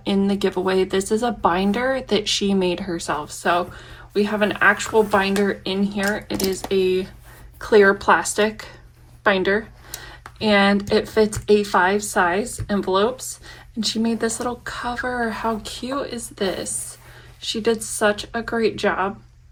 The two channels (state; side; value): identical; both; correlation 1.00